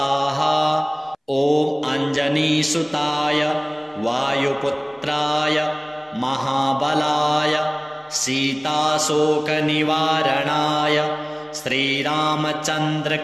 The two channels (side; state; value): both; identical; correlation 1.00